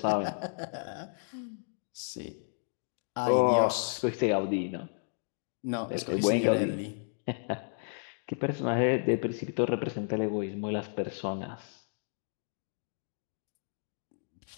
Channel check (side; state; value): right; silent; digital silence